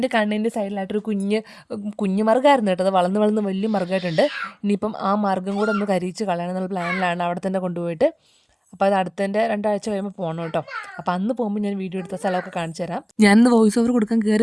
കണ്ണിൻ്റെ സൈഡിലായിട്ടൊരു കുഞ്ഞു മറുകായിരുന്നു കേട്ടോ. അത് വളർന്ന് വലിയ മറുകായിട്ടുണ്ട്. ഇനിയിപ്പം ആ മാർഗ്ഗം കൂടെ ഒന്ന് കരിയിച്ച് കളയണം എന്നുള്ള പ്ലാനിലാണ്. അവിടെ തന്നെ കൊണ്ടുപോയിട്ട് അപ്പോൾ അത് അടുത്തതിൻ്റെ 2 ആഴ്ച കഴിയുമ്പോൾ പോകണം കേട്ടോ. അപ്പോൾ അന്ന് പോകുമ്പോൾ ഞാൻ വീഡിയോ എടുത്ത സ്ഥലമൊക്കെ കാണിച്ചു തരാം. ഞാനിന്ന് വോയിസ് ഓവർ കൊടുക്കാൻ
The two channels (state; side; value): identical; both; correlation 1.00